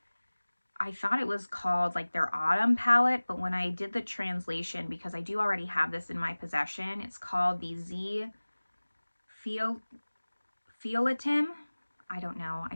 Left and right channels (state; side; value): inverted; both; correlation -1.00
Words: I thought it was called like their autumn palette, but when I did the translation, because I do already have this in my possession, it's called the Z Fioletem. I don't know. I